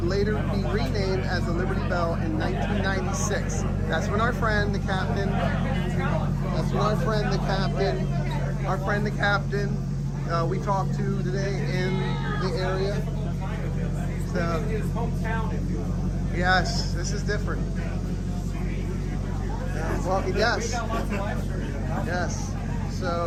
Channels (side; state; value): both; identical; correlation 1.00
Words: later be renamed as the Liberty Belle in 1996. That's when our friend, the captain, we talked to today in the area. So, yes, this is different. Well, yes. So,